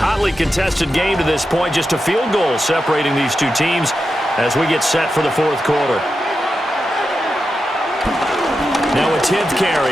contested game to this point. Just a field goal separating these two teams as we get set for the 4th quarter. Now a 10th carry.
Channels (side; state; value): both; normal; correlation 0.89